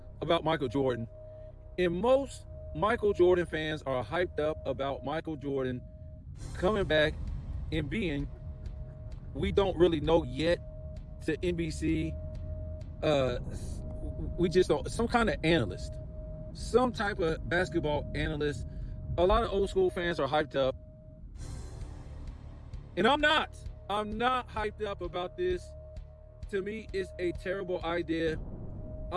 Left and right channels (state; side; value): identical; both; correlation 1.00